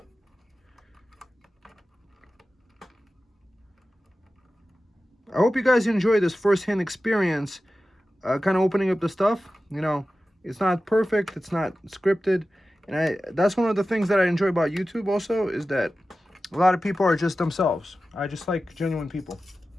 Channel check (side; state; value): both; normal; correlation 0.94